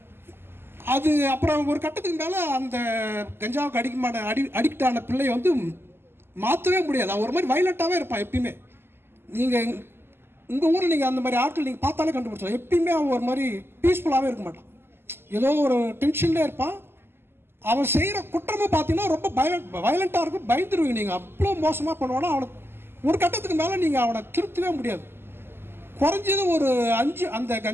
அது அப்புறம் ஒரு கட்டத்துக்கு மேலே அந்த கஞ்சாவுக்கு அடிக்ட் ஆன பிள்ளையை வந்து மாற்றவே முடியாது. அவன் ஒரு மாதிரி வைலண்ட்டாகவே இருப்பான் எப்பயுமே. நீங்கள் உங்கள் ஊரில் நீங்கள் அந்த மாதிரி ஆட்கள் நீங்கள் பார்த்தாலே கண்டுபிடிச்சலாம். எப்பயுமே அவன் ஒரு மாதிரி பீஸ்ஃபுல்லாகவே இருக்க மாட்டான். ஏதோ ஒரு டென்ஷன்லேயே இருப்பான். அவன் செய்கிற குற்றமே பார்த்தீங்கன்னா ரொம்ப வயலண்ட்டாக இருக்கும். பயந்துருவீங்க நீங்கள். அவ்வளோ மோசமாக பண்ணுவானா. அவனுக்கு ஒரு கட்டத்துக்கு மேலே நீங்கள் அவனை திருத்தவே முடியாது. குறைஞ்சது ஒரு 5 அந்த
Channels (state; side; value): late; left; 0.11 ms